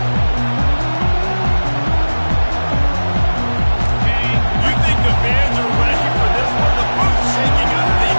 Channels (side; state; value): both; inverted; correlation -1.00